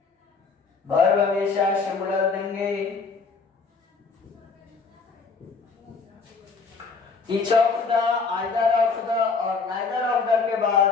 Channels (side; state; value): right; quieter; 4.7 dB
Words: वर्ब हमेशा सिंगुलर देंगे। Each of the, either of the और नाइदर ऑफ द के